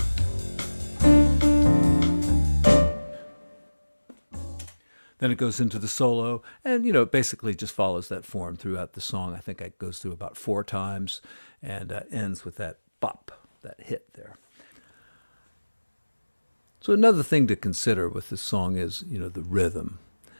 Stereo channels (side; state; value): both; inverted; correlation -1.00